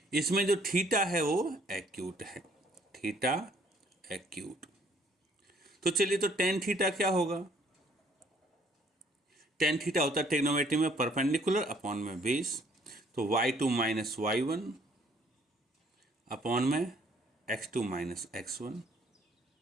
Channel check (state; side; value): normal; both; correlation 0.62